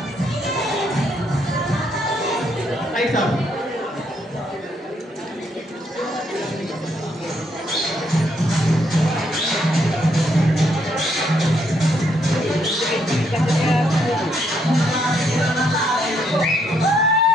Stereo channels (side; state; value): both; normal; correlation 0.73